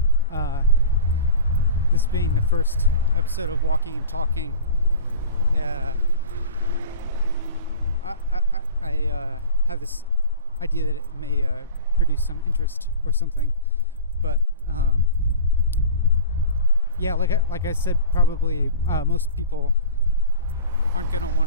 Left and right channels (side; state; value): both; inverted; correlation -0.36